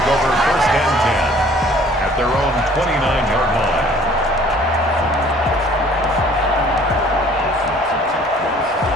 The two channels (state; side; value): normal; both; correlation 0.54